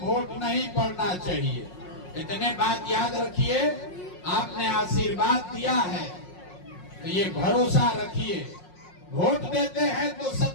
वोट नहीं पड़ना चाहिए। इतने बात याद रखिए, आपने आशीर्वाद दिया है तो ये भरोसा रखिए, वोट देते हैं तो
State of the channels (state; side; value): late; right; 5.5 ms